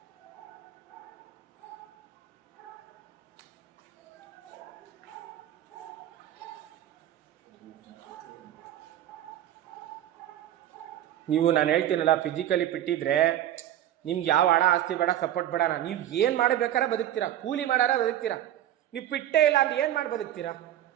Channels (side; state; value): left; quieter; 12.1 dB